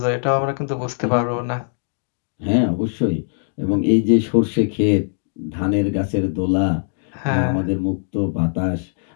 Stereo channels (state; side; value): silent; right; digital silence